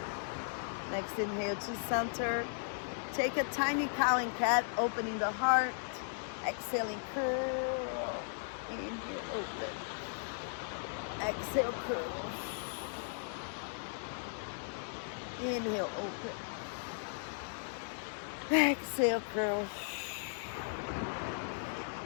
Next inhale to center. Take a tiny cow and cat, opening the heart. Exhaling, curl. Inhale, open. Exhale, curl. Inhale, open. Exhale, curl.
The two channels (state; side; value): silent; right; digital silence